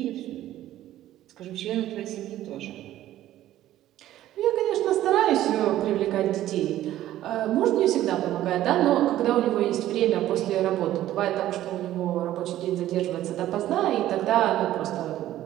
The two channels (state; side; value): quieter; left; 13.6 dB